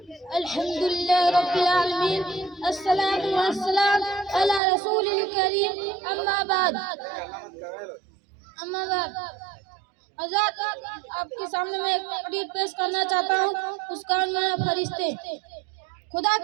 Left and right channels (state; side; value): drops out; left; at 4.6 s